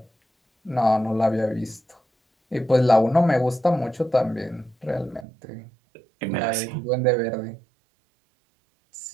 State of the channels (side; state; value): left; drops out; at 5.2 s